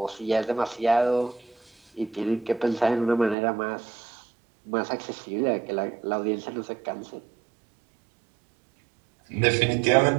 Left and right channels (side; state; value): left; drops out; at 3.4 s